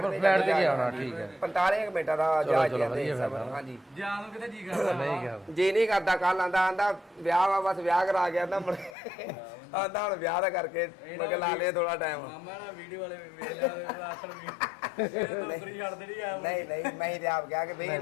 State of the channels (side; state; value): right; drops out; at 9.0 s